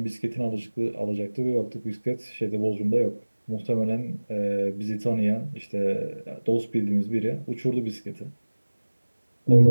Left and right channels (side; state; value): both; inverted; correlation -1.00